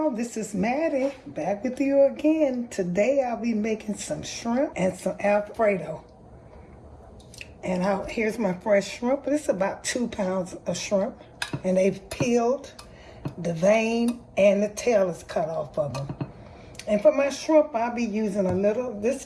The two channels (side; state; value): both; identical; correlation 1.00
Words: this is Mattie, back with you again. Today I'll be making some shrimp and some Alfredo. And here's my fresh shrimp. This is about 2 pounds of shrimp. And they've peeled, the vein and the tail is cut off of them. And for my shrimp, I'll be using a little, this